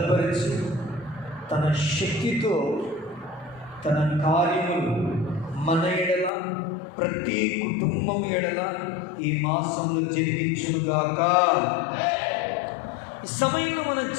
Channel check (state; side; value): drops out; right; at 6.3 s